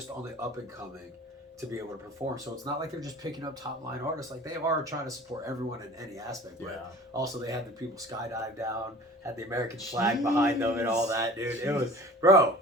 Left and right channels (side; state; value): both; normal; correlation 0.43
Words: on the up and coming to be able to perform. So it's not like they're just picking up top line artists. Like they are trying to support everyone in any aspect. But also they had the people skydive down, had the American flag behind them and all that, dude. It was, bro.